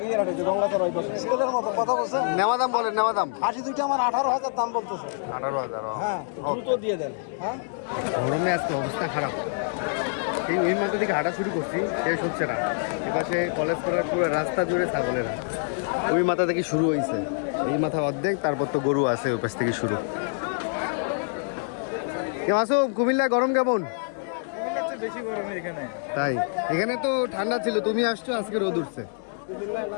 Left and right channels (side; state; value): right; silent; 61 dB below the other